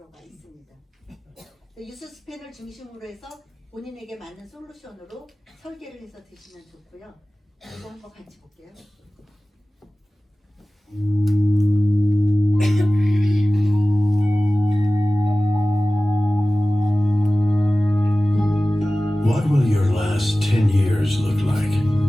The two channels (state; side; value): normal; both; correlation 0.97